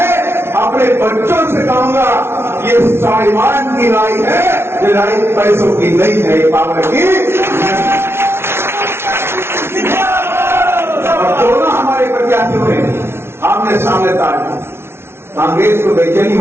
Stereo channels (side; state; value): left; late; 0.12 ms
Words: अपने बच्चों से कहूंगा ये स्वाभिमान की लड़ाई है, ये लड़ाई पैसों की नहीं है, ये पावर की। और दोनों हमारे प्रत्याशी हुए आमने सामने ताड़, कांग्रेस को बेचैनी